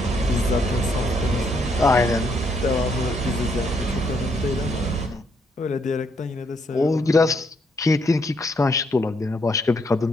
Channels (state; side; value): normal; both; correlation 0.73